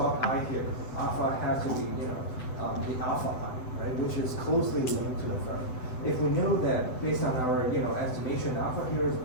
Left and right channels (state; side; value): late; right; 7.9 ms